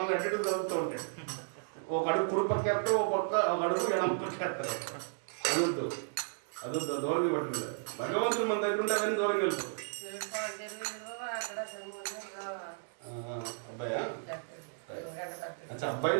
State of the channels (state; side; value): silent; left; digital silence